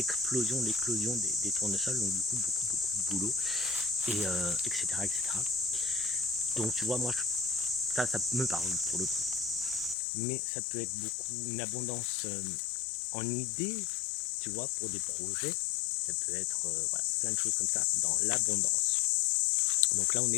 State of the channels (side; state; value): right; drops out; at 10.0 s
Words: des tournesols, donc du coup, beaucoup de boulot, et etc., etc. Donc tu vois, moi, ça me parle pour le coup. Mais ça peut être beaucoup une abondance en idées, tu vois, pour des projets. Ça peut être voilà, plein de choses comme ça dans l'abondance. Donc là, on